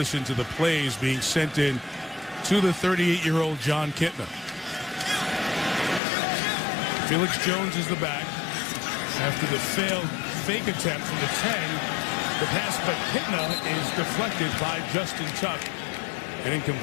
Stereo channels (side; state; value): right; drops out; at 6.0 s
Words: to the plays being sent in to the 38-year-old John Kitna. Felix Jones is the back. After the failed fake attempt from the 10, the pass by Kitna is deflected by Justin Tuck and